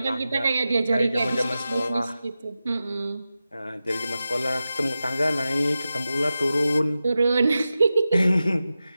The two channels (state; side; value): inverted; both; correlation -0.93